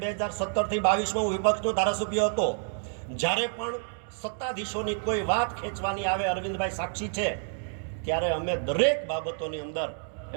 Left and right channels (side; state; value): left; silent; 58 dB below the other